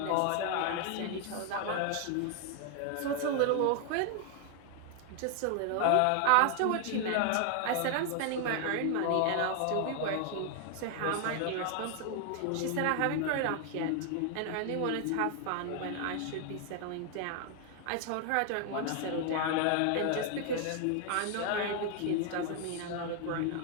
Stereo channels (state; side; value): different; both; correlation 0.00